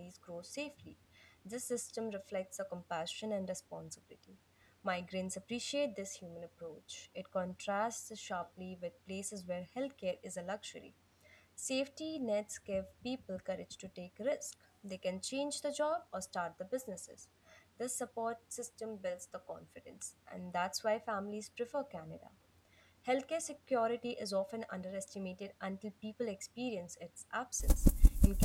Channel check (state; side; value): identical; both; correlation 1.00